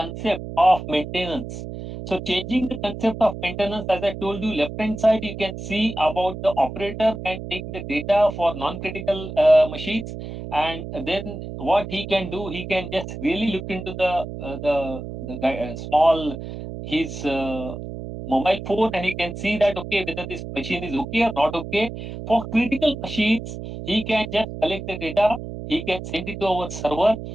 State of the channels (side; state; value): right; noise; hum, 9 dB below the sound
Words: of maintenance. So changing the concept of maintenance, as I told you, left hand side, you can see about the operator can take the data for non-critical machines. And then what he can do, he can just really look into the small, his mobile phone, and he can see that, okay, whether this machine is okay or not okay. For critical machines, he can just collect the data, he can send it to our server.